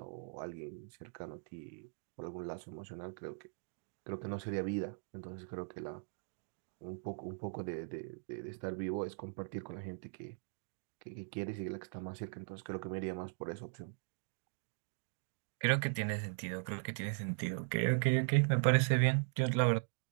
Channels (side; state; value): left; silent; digital silence